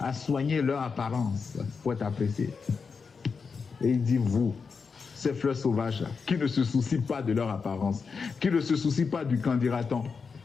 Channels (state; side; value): quieter; right; 5.3 dB